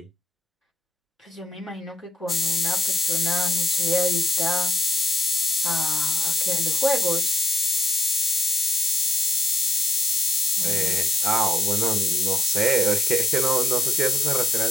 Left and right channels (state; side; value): normal; both; correlation 0.76